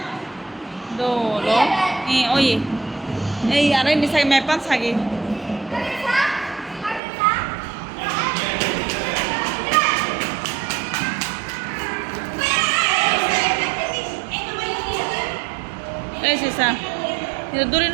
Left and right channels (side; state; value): left; drops out; at 7.0 s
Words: দোলো ওই এই আরে নিসাগে মেপান সাগি Sisa, itu duri